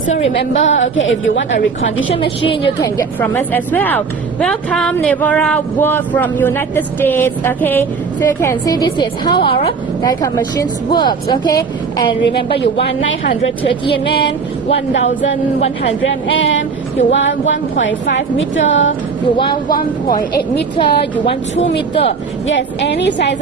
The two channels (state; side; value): quieter; left; 5.2 dB